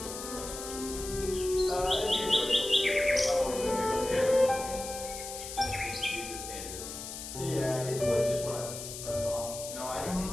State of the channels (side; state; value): left; noise; hiss, 9 dB below the sound